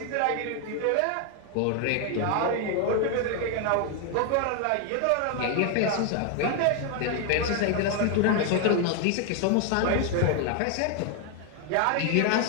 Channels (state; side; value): different; both; correlation 0.01